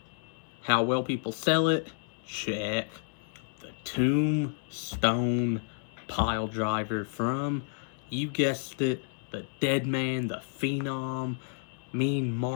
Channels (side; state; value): right; silent; 57 dB below the other